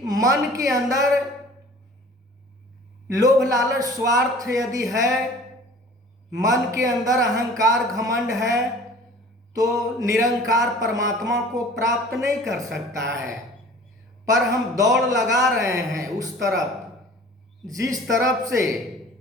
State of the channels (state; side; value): normal; both; correlation 0.46